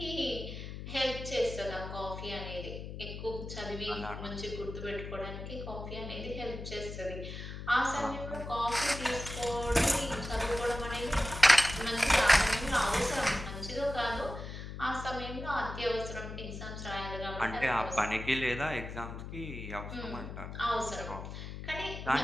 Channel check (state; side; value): noise; left; hum, 9 dB below the sound